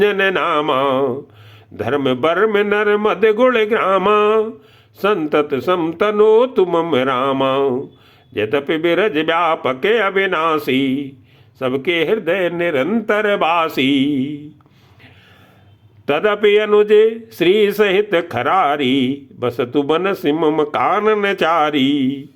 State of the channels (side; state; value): both; identical; correlation 1.00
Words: नामा। धर्म बर्म नर मद गुण ग्रामा संतत समतनो तुम रामा। यद्यपि बिरज व्यापक अविनाशी सबके हृदय निरंतर वासी। तदपि अनुजे श्री सहित खरारी बसतु बन सिमम कानन चारी।